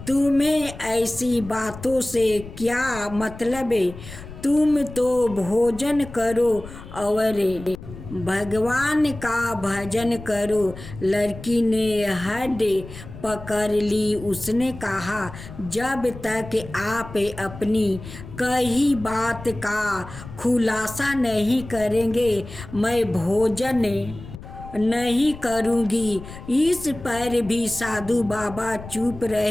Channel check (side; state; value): left; noise; rumble, 14 dB below the sound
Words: तुम्हें ऐसी बातों से क्या मतलब? तुम तो भोजन करो और भगवान का भजन करो। लड़की ने हड पकड़ ली। उसने कहा, जब तक आप अपनी कही बात का खुलासा नहीं करेंगे मैं भोजन नहीं करूँगी। इस पर भी साधु बाबा चुप